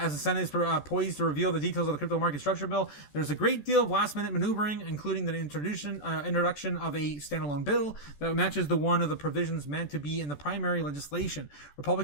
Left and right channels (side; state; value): right; late; 14 ms